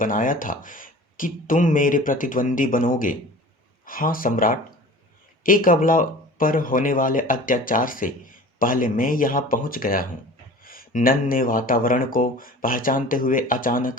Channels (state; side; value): normal; both; correlation 0.41